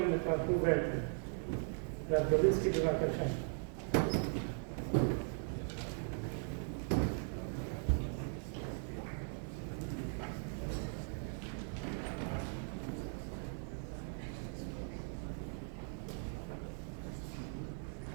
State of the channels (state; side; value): silent; left; 52 dB below the other